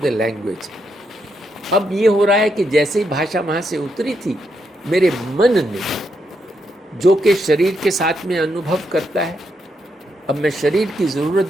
the language. अब ये हो रहा है कि जैसे ही भाषा वहाँ से उतरी थी, मेरे मन ने, जो कि शरीर के साथ में अनुभव करता है, अब मैं शरीर की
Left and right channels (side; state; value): both; normal; correlation 0.80